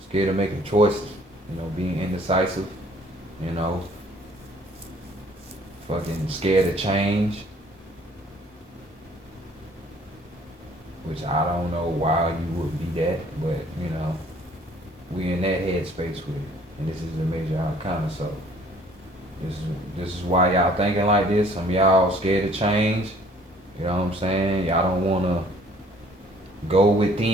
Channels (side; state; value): both; normal; correlation 0.57